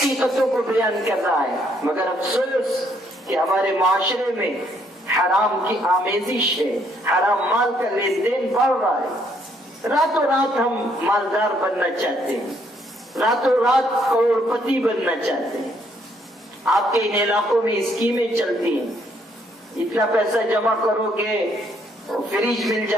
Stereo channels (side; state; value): both; normal; correlation 0.69